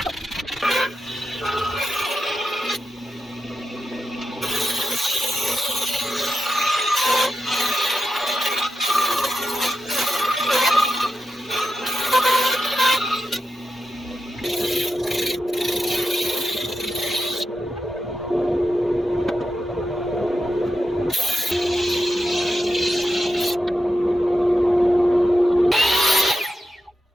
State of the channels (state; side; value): normal; both; correlation 0.89